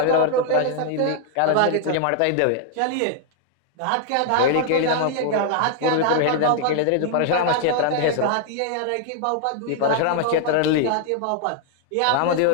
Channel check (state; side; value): different; both; correlation 0.00